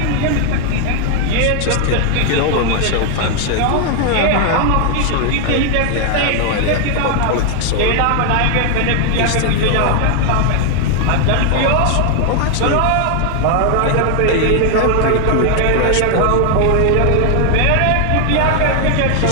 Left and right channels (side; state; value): both; different; correlation 0.00